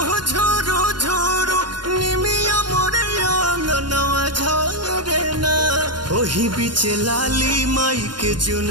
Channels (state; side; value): late; left; 0.71 ms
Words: झुरु झुरु निमिया मोरे अंगनवा झरे ना ओही बीचे लाली माई के